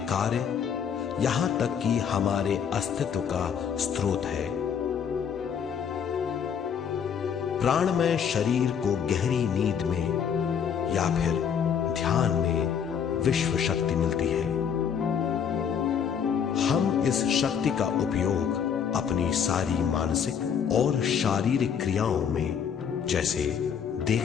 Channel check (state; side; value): quieter; right; 7.6 dB